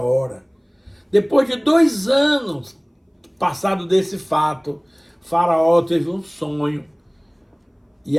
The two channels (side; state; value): both; identical; correlation 1.00